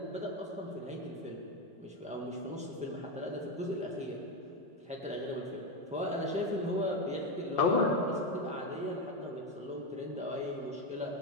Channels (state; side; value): normal; both; correlation 0.11